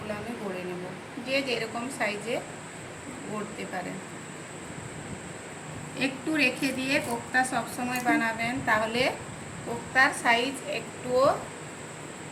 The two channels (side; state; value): both; identical; correlation 1.00